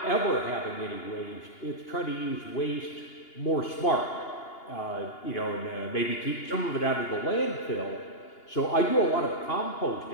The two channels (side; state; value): right; late; 2.8 ms